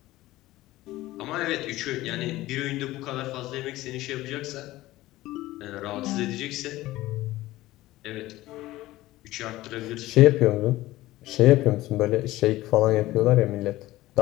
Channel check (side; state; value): right; quieter; 17.1 dB